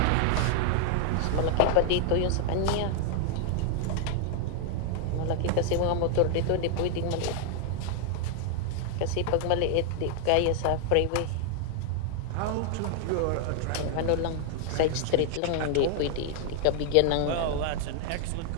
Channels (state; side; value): different; both; correlation 0.00